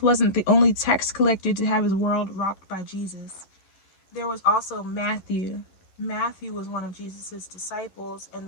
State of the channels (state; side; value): late; right; 11 ms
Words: wasn't the only tax collector to have his world rocked by Jesus. There was also Matthew. Matthew was one of Jesus' disciples, and